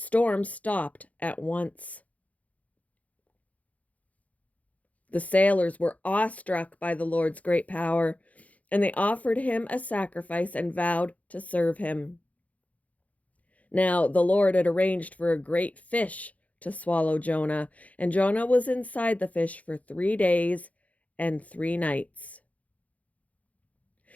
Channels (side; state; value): right; late; 0.070 ms